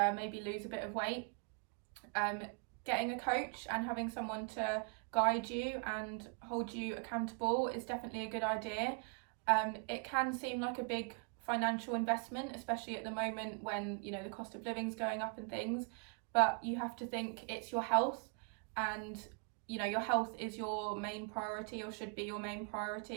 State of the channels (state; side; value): quieter; left; 38.5 dB